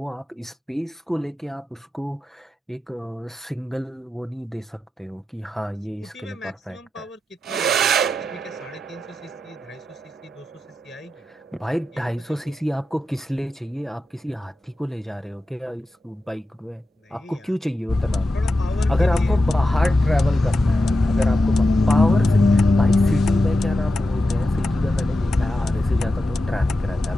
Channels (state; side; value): normal; both; correlation 0.90